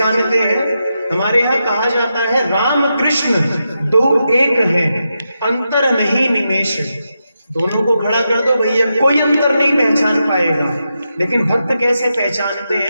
हैं? हमारे यहाँ कहा जाता है राम कृष्ण दो एक हैं, अंतर नहीं निमेष। दोनों को खड़ा कर दो भैया, कोई अंतर नहीं पहचान पाएगा। लेकिन भक्त कैसे पहचानते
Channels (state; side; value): inverted; both; correlation -0.86